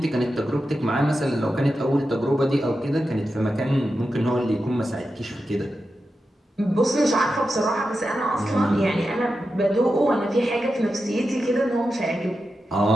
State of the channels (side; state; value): both; normal; correlation 0.90